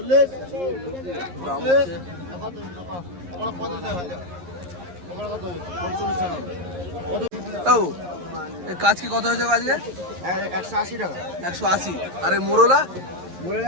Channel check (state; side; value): late; left; 11 ms